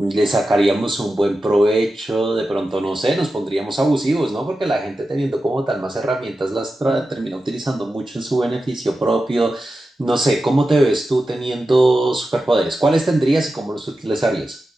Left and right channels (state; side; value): normal; both; correlation 0.92